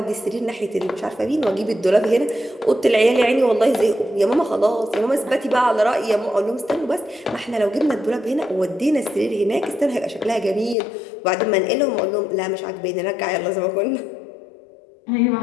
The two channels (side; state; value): right; drops out; at 10.8 s